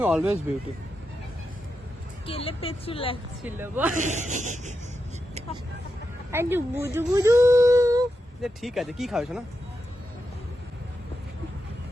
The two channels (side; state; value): both; normal; correlation 0.87